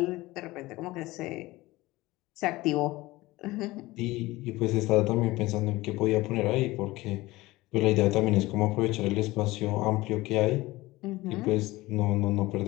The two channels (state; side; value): quieter; right; 19.5 dB